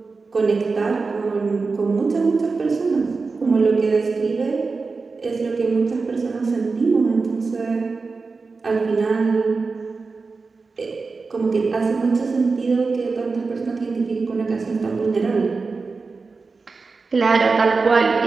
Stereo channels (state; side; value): quieter; left; 4.3 dB